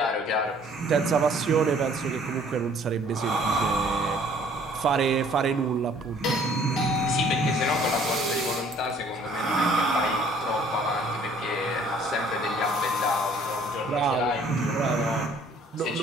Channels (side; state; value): both; normal; correlation 0.57